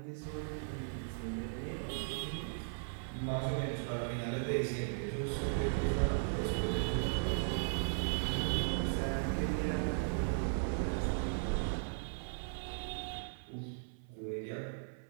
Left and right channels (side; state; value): left; silent; 53 dB below the other